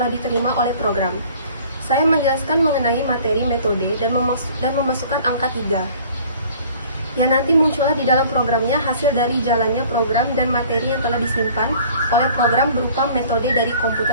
diterima oleh program. Saya menjelaskan mengenai materi metode dan memasukkan angka 3 yang nanti muncullah di dalam programnya hasil dari jalannya program dan materi yang telah disimpan oleh program berupa metode dari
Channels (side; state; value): both; inverted; correlation -0.50